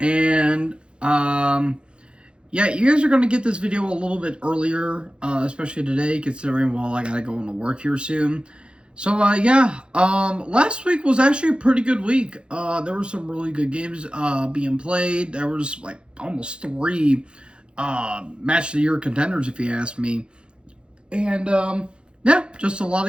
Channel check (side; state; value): left; late; 0.054 ms